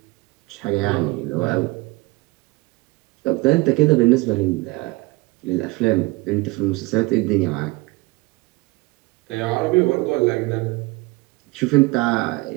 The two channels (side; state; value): left; quieter; 23.0 dB